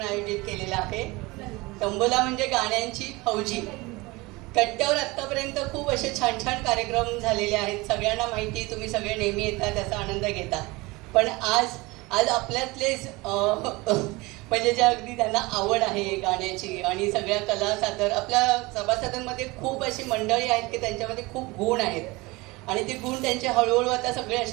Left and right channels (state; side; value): quieter; left; 22.9 dB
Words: आयोजित केलेला आहे. तंबोला म्हणजे गाण्यांची फौजी. कट्ट्यावर आत्तापर्यंत खूप असे छान छान कार्यक्रम झालेले आहेत. सगळ्यांना माहिती, तुम्ही सगळे नेहमी येता, त्याचा आनंद घेता. पण आज आपल्यातलेच म्हणजे जे अगदी त्यांना आवड आहे गाण्याची आणि सगळ्या कला सादर, आपल्या सभासदांमध्ये खूप अशी मंडळी आहेत की त्यांच्यामध्ये खूप गुण आहेत आणि ते गुण त्यांचे हळूहळू आता सगळे